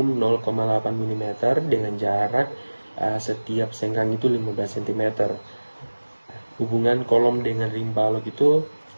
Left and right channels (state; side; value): inverted; both; correlation -1.00